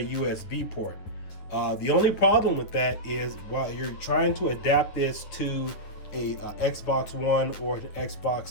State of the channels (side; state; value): right; late; 9.9 ms